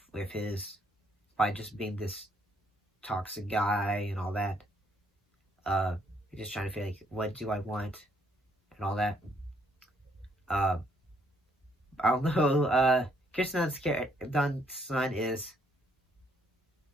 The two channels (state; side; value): normal; both; correlation 0.69